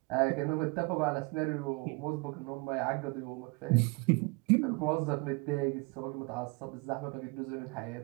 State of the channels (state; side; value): quieter; left; 28.1 dB